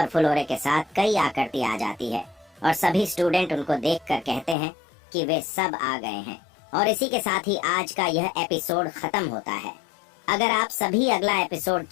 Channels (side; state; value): right; drops out; at 4.5 s